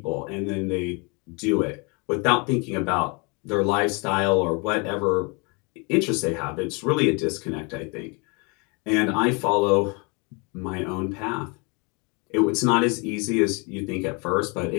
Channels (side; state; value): right; quieter; 31.2 dB